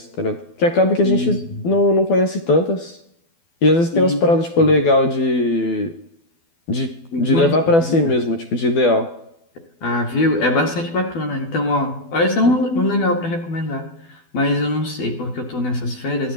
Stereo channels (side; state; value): right; late; 12 ms